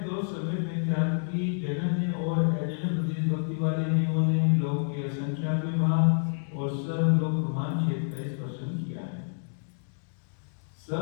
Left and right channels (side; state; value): right; silent; digital silence